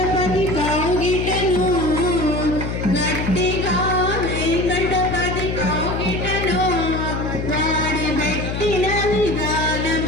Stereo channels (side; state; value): left; noise; hum, 4 dB below the sound